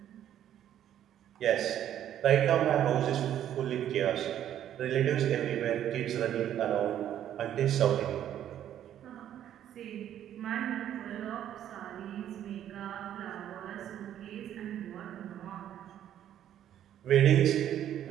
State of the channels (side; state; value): left; quieter; 10.9 dB